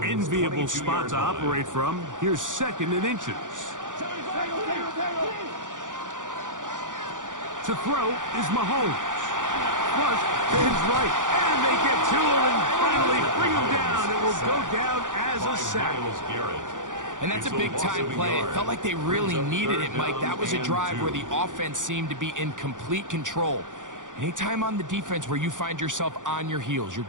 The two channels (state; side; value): late; left; 0.87 ms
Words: enviable spot to operate from. Here's 2nd and inches. To throw is Mahomes. Flush to his right. And they get to him and finally bring him down. It will go down as a sack. And that's a big-time play. It felt like they really needed it, Mike. That was a drive where the offense seemed to be in complete control. Anytime on the defense where you find yourself on your heels, you're